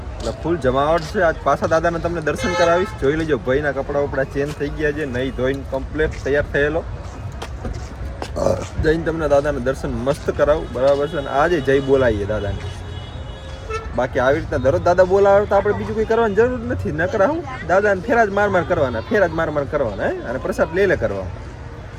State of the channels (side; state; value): both; identical; correlation 1.00